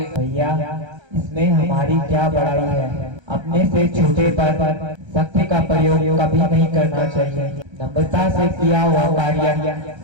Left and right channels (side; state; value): left; late; 1.3 ms